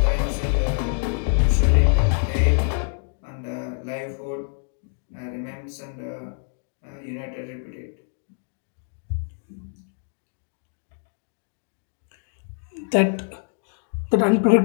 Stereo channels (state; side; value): silent; right; digital silence